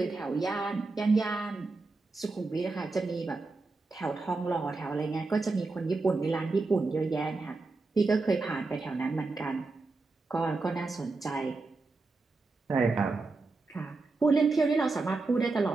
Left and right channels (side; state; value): left; quieter; 3.6 dB